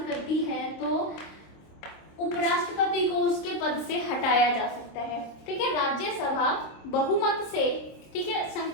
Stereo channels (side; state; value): right; late; 26 ms